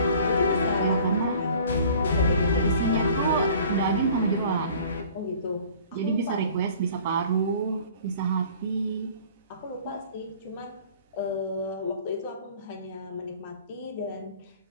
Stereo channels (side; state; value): both; inverted; correlation -0.49